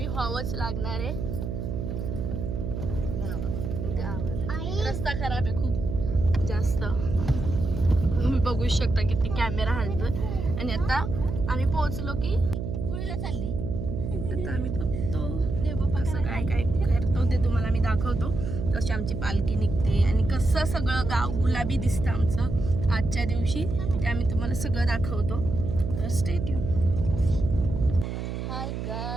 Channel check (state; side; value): noise; right; hum, 4 dB below the sound